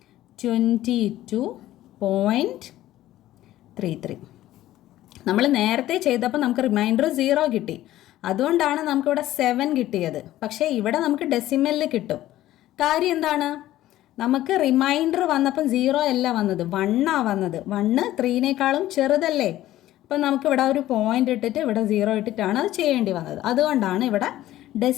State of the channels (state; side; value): quieter; right; 14.5 dB